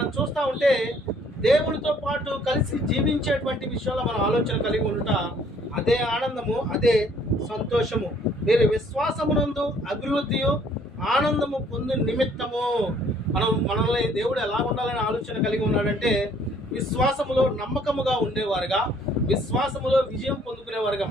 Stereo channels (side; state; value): both; normal; correlation 0.61